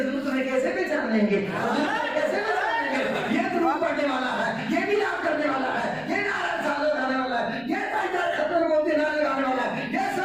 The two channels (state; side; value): noise; left; rumble, 27 dB below the sound